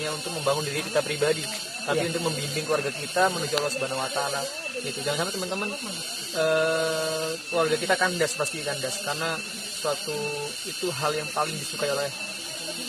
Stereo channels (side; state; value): both; identical; correlation 1.00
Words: untuk membangun diri kita pribadi, tapi untuk membimbing keluarga kita menuju Allah Subhanahu Wa Taala gitu. Jangan sampai teman-teman keluarga kita kandas, pasti kandas, karena suatu itu hal yang paling disukai oleh